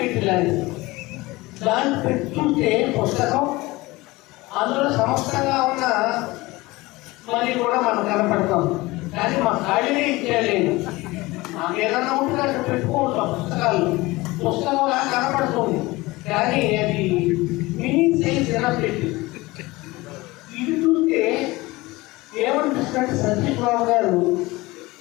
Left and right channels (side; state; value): right; quieter; 21.0 dB